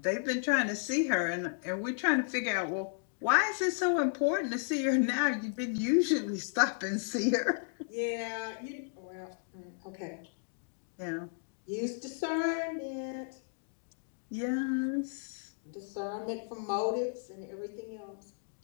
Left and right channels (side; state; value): right; silent; digital silence